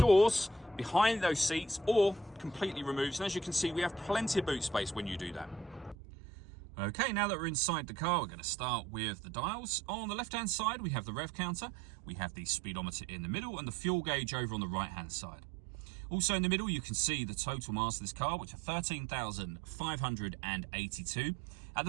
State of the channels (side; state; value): left; drops out; at 6.0 s